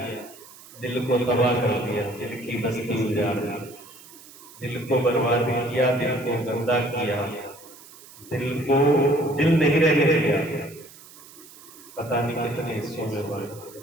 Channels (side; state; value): right; noise; hiss, 20 dB below the sound